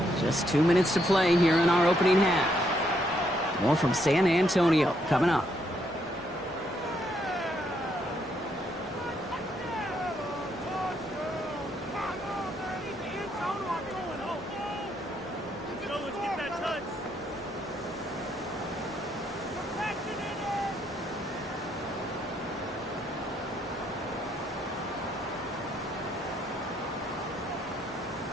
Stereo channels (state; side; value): normal; both; correlation 0.74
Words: Just 2 minutes to play here in our opening half. More from San Antonio coming up.